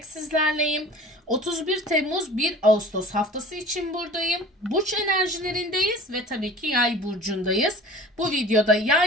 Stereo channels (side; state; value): both; normal; correlation 0.42